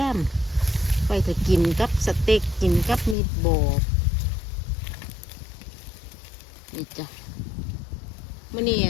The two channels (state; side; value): drops out; right; at 3.2 s